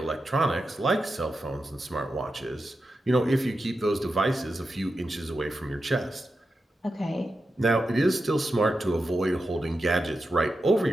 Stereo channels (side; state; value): both; normal; correlation 0.89